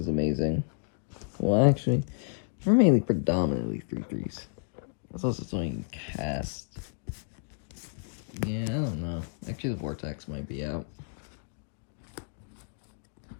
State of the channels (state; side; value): silent; right; digital silence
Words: amazing. Well, actually, we're mainly predominantly 3/3s. That's also something you can cast. Yeah, I don't know. Actually, the Vortex might be out.